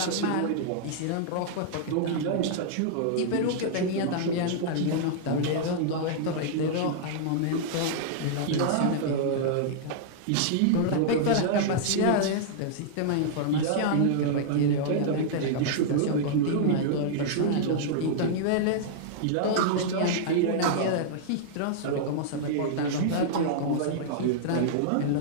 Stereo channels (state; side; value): different; both; correlation -0.02